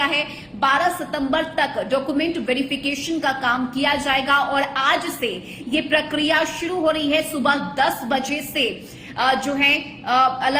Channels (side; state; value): both; identical; correlation 1.00